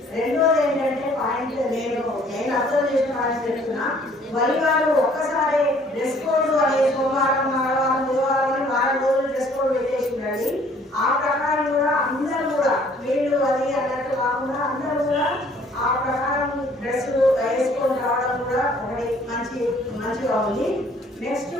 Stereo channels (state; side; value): normal; both; correlation 0.58